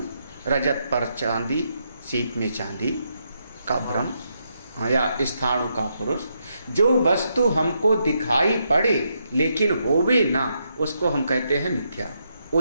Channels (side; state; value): both; inverted; correlation -0.79